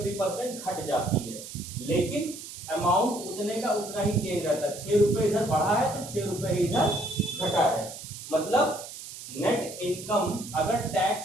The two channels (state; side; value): noise; right; hiss, 12 dB below the sound